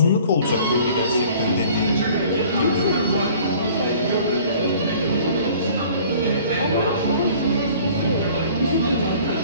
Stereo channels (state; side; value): inverted; both; correlation -0.50